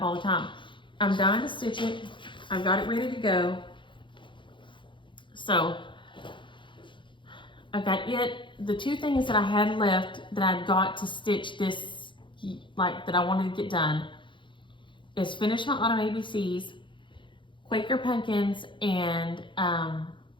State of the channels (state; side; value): late; right; 0.23 ms